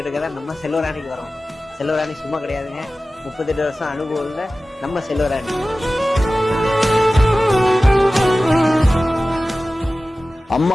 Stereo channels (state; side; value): normal; both; correlation 0.96